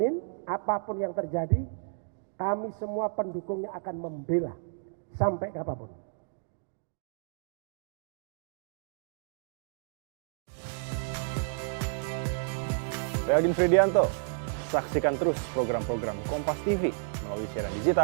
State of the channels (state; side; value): silent; left; digital silence